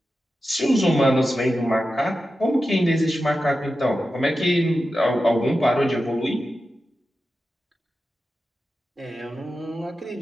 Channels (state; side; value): normal; both; correlation 0.92